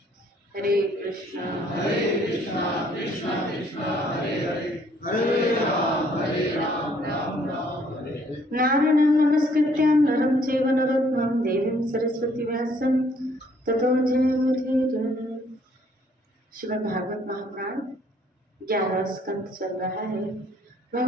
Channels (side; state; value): both; normal; correlation 0.63